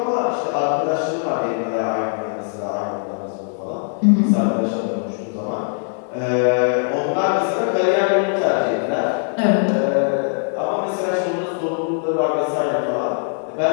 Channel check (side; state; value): right; silent; digital silence